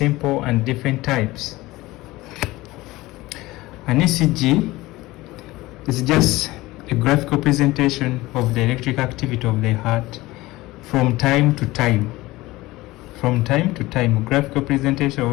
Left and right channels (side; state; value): right; quieter; 19.1 dB